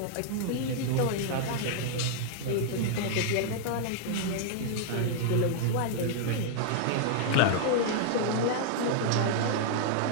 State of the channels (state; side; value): different; both; correlation -0.01